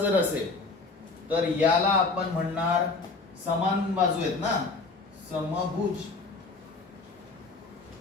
असेल तर याला आपण म्हणणार समान बाजू आहेत ना, समभुज,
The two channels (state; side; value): quieter; right; 3.9 dB